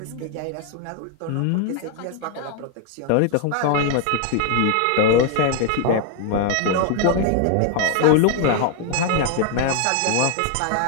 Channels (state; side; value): different; both; correlation 0.00